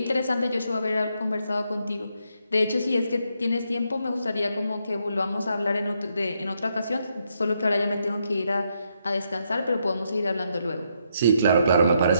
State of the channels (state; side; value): inverted; both; correlation -0.77